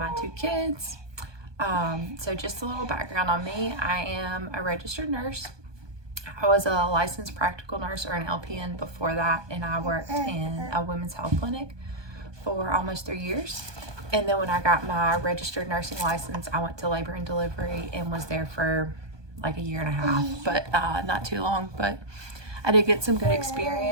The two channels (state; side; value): late; left; 1.2 ms